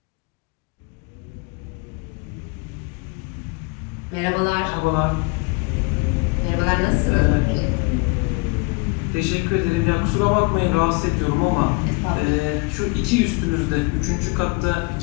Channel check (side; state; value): right; quieter; 28.7 dB